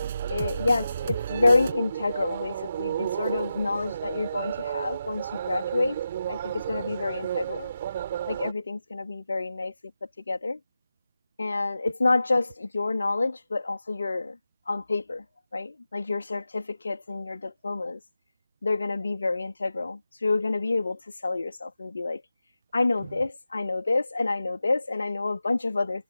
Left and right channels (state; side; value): inverted; both; correlation -0.91